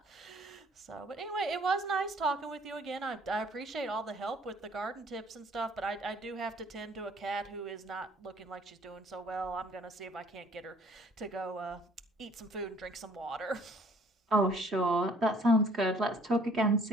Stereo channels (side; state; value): both; normal; correlation 0.58